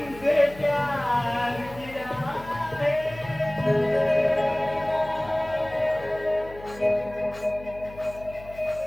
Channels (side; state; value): left; noise; hum, 18 dB below the sound